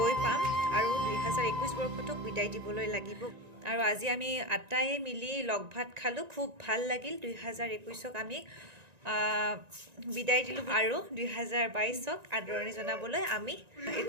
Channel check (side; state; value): left; late; 1.9 ms